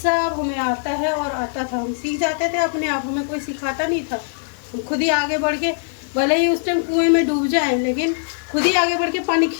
हमें आता है और आता था। हम सीख जाते थे अपने आप, हमें कोई सिखाता नहीं था। हम खुद ही आगे बढ़ के, भले ही उस टाइम कुएं में डूब जाएं, लेकिन खुद ही आगे बढ़ के पानी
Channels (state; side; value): silent; right; 56 dB below the other